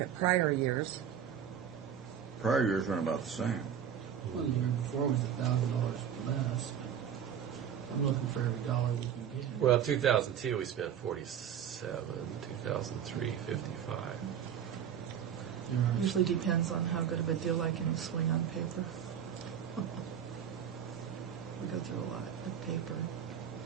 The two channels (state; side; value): quieter; left; 8.7 dB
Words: prior years, Prior years run about the same. Well, the year before was $1,000 less. I'm looking for every dollar we can get. Well, 2002 we spent 47, 2003 55. Usually depends on how good of a deal I can swing on paper. We go through a lot of paper,